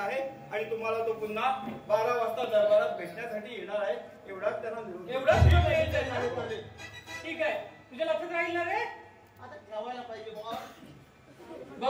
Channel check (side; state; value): both; identical; correlation 1.00